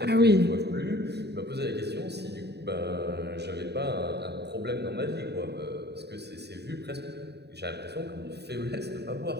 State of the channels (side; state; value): left; late; 0.48 ms